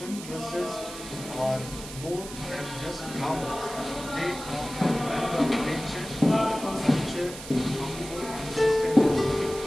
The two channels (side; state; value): right; noise; hiss, 12 dB below the sound